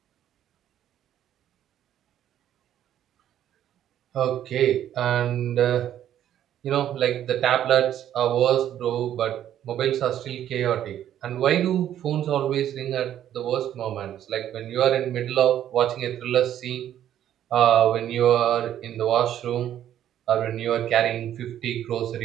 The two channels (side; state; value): left; quieter; 11.0 dB